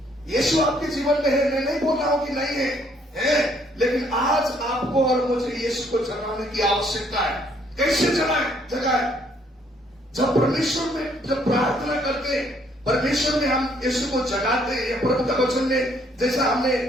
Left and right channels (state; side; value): normal; both; correlation 0.66